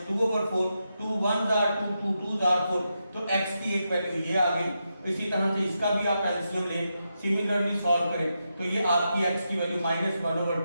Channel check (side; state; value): both; inverted; correlation -0.86